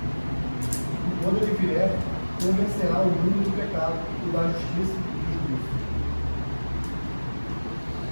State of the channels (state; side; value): inverted; both; correlation -1.00